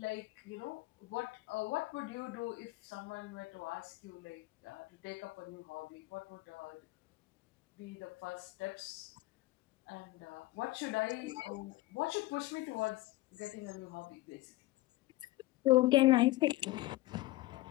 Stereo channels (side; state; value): right; quieter; 19.0 dB